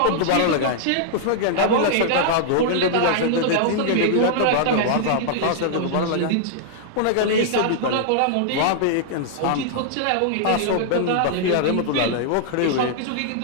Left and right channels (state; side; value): different; both; correlation -0.01